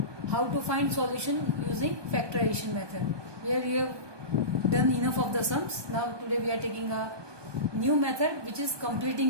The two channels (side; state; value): left; late; 1.2 ms